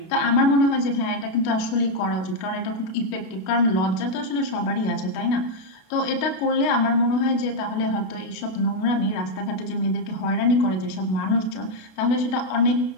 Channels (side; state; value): right; late; 32 ms